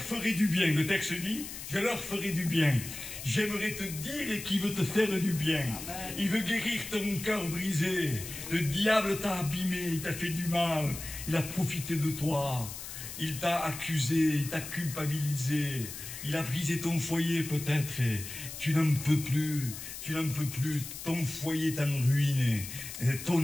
du bien. Le texte dit, je leur ferai du bien. J'aimerais te dire qu'il veut te faire du bien. Il veut guérir ton cœur brisé. Le diable t'a abîmé, il t'a fait du mal. Il a profité de toi. Il t'a accusé, il t'a culpabilisé. Il a brisé ton foyer peut-être. Tu n'en peux plus. Tu n'en peux plus. Ton foyer est en ruine.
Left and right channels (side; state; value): left; noise; hiss, 10 dB below the sound